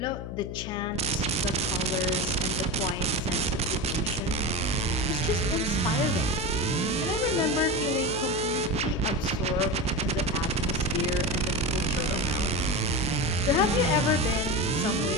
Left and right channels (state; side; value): noise; left; hum, 8 dB below the sound